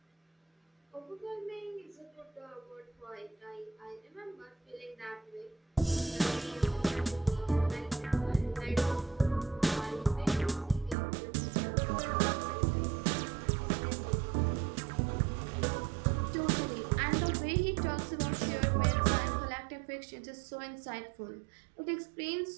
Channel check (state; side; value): drops out; left; at 11.0 s